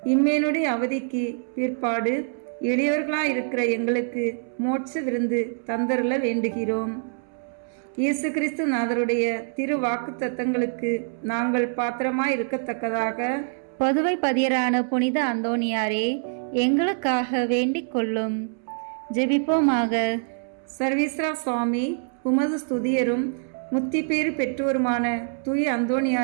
இம்மேனுடைய அவதிக்கு பிற்பாடு எளியவர்களாயிருக்கிற எங்களுக்கு மோட்ச விருந்து தந்தருள வேண்டுகிறோம். இயேசு கிறிஸ்து நாதருடைய திரு வாக்கு தத்தங்களுக்கு நாங்கள் பாத்திரமாய் இருக்கத்தக்கதாக பதுவை பதியரான புனித அந்தோணியாரே, எங்களுக்காக வேண்டிக் கொள்ளும். ஜெபிப்போமாக. சர்வீஸ்வரா சுவாமி, உமது ஸ்துதியரும் முத்தி பேறு பெற்றோருமான தூய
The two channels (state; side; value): silent; left; 62 dB below the other